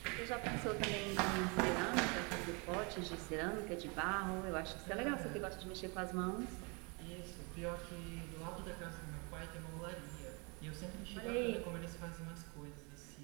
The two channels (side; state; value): left; quieter; 31.5 dB